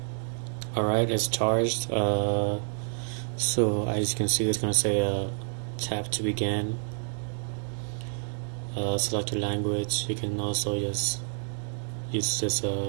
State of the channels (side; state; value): left; silent; 59 dB below the other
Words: Alright, it's charged. So as you can see, it's gonna say tap to begin. Select your language. You can also just use this